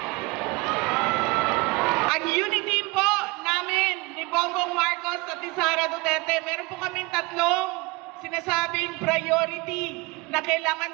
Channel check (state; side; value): quieter; left; 24.7 dB